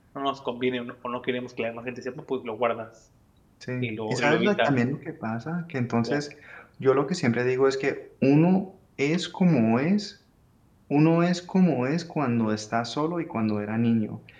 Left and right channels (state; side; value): identical; both; correlation 1.00